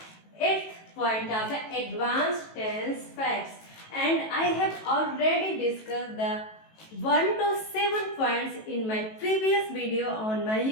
8th point of the advanced tense facts. And I have already discussed the 1 to 7 points in my previous video on my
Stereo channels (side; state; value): right; late; 18 ms